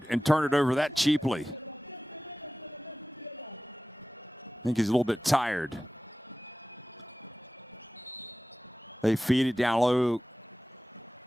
and turn it over that cheaply. I think he's a little bit tired. They feed it down low.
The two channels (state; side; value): normal; both; correlation 0.95